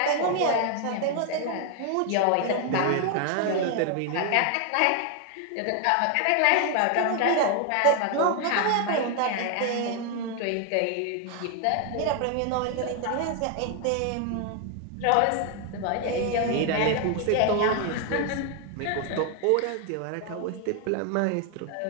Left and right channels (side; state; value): both; different; correlation 0.00